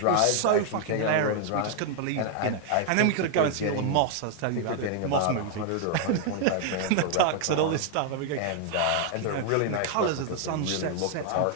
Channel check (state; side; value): different; both; correlation 0.00